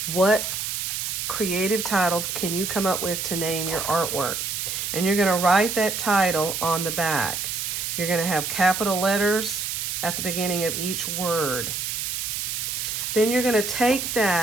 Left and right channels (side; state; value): right; noise; hiss, 3 dB below the sound